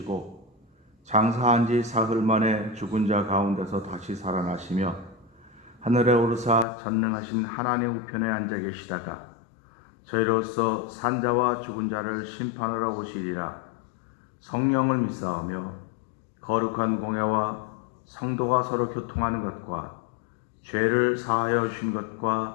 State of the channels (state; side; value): drops out; right; at 6.7 s